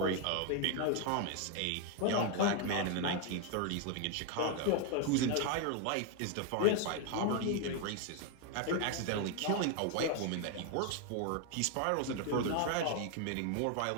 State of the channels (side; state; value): both; different; correlation 0.01